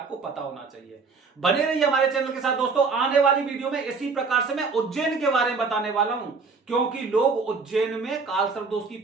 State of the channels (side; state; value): left; quieter; 4.7 dB